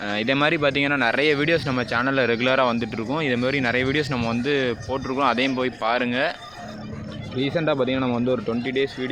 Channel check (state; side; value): noise; left; rumble, 26 dB below the sound